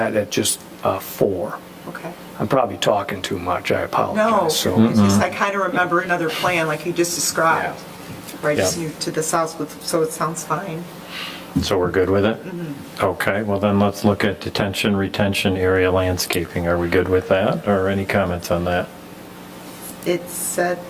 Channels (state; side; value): identical; both; correlation 1.00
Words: at just 4. Okay. I'm probably talking too much, I No, apologize. So, it's just, I kind of remember another plan like you just described. Right, just Yeah. moved to the south, so it sounds fine. So we're good with it? Okay, well then let's look at detention, retention area landscaping. Are we good with that, or any comments on that? It said